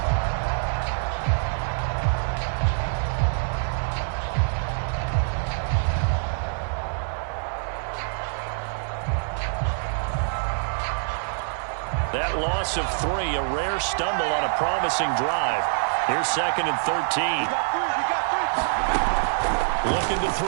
That loss of 3, a rare stumble on a promising drive. Here's 2nd and 13. Looking to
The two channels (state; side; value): silent; left; 58 dB below the other